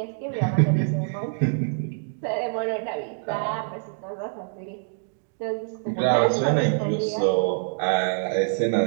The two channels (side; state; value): left; silent; digital silence